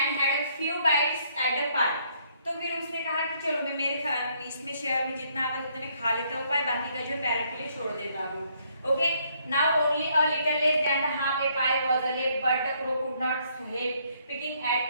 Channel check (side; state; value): both; inverted; correlation -0.69